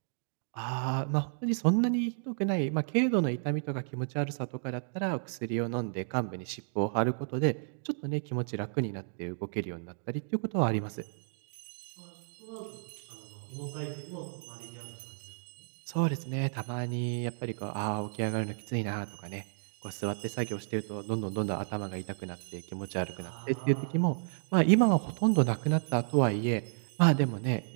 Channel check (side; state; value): left; silent; digital silence